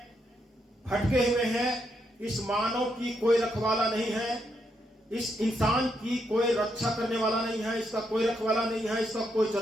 भटके हुए हैं। इस मानव की कोई रखवाला नहीं है, इस इंसान की कोई रक्षा करने वाला नहीं है, इसका कोई रखवाला नहीं है, इसका कोई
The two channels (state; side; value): normal; both; correlation 0.79